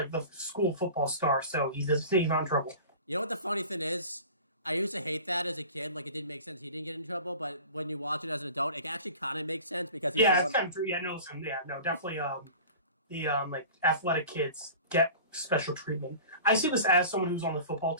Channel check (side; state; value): both; inverted; correlation -0.39